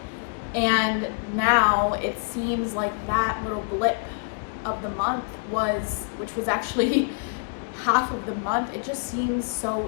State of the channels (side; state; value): right; quieter; 36.9 dB